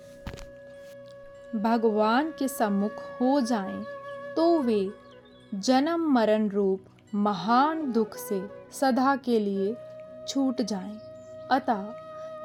भगवान के सम्मुख हो जाएं, तो वे जन्म मरण रूप महान दुख से सदा के लिए छूट जाएं।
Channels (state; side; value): identical; both; correlation 1.00